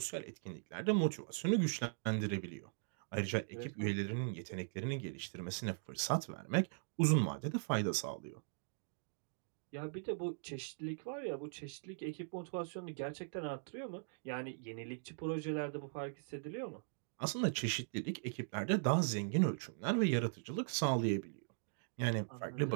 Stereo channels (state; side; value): silent; left; digital silence